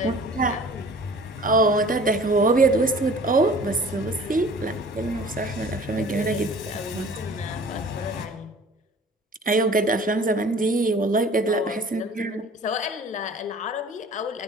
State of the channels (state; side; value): normal; both; correlation 0.47